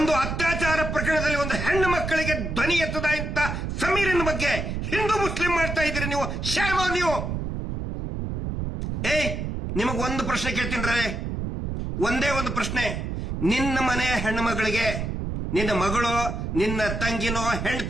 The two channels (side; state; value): right; noise; rumble, 3 dB below the sound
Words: ಅತ್ಯಾಚಾರ ಪ್ರಕರಣದಲ್ಲಿ ಒಂದು ಹೆಣ್ಣು ಮಕ್ಕಳಿಗೆ ಧ್ವನಿ ಎತ್ತದ ಇಂತ ಸಮೀರಿನ ಬಗ್ಗೆ ಹಿಂದೂ ಮುಸ್ಲಿಂ ಮಾಡ್ತಾ ಇದ್ದೀರಿ ನೀವು. ಶ್ಯಾಮ ನೀವು. ನಿಮಗ್ ಒಂದು ಪ್ರಶ್ನೆ ಕೇಳ್ತೀನಿ, ಒಂದೇ ಒಂದು ಪ್ರಶ್ನೆ. ನಿನ್ನ ಮನೆಯ ಹೆಣ್ಣು ಮಗಳಿಗೆ, ನಿನ್ನ ಮಗಳು, ನಿನ್ನ ತಂಗಿನೋ,